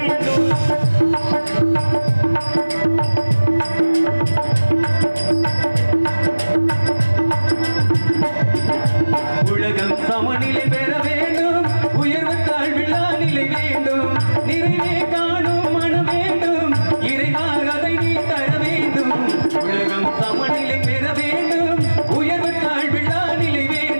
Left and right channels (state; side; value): inverted; both; correlation -1.00